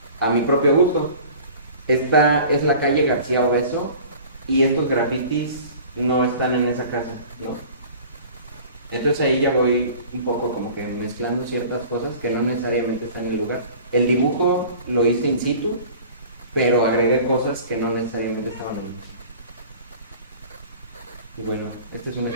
a mi propio gusto. Esta es la calle García Obeso y estos grafitis no están en esa casa, ¿no? Entonces ahí ya voy un poco como que mezclando ciertas cosas que no necesariamente están en el lugar. El dibujo lo hice in situ, pero agregué cosas que no necesariamente estaban ahí. Y bueno, este es un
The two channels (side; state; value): both; inverted; correlation -0.44